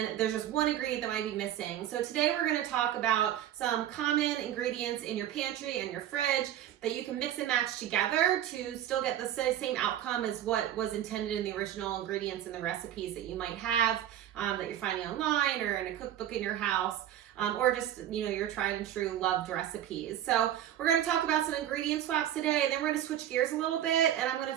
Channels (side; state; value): left; quieter; 11.5 dB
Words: there's just one ingredient that might be missing. So today we're going to talk about some common ingredients in your pantry and your fridge that you can mix and match together to still get the same outcome as what was intended in the original ingredients and the recipes that you might have that you're finding online or in a cookbook in your house. Or just, your tried and true loved recipes. So we're going to talk about some ingredient swaps today, and then we're going to switch gears a little bit, and I'm going